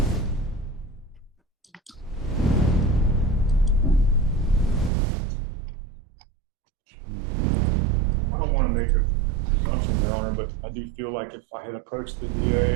I don't want to make a presumption, Your Honor, but I do feel like if I had approached the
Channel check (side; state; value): left; drops out; at 4.9 s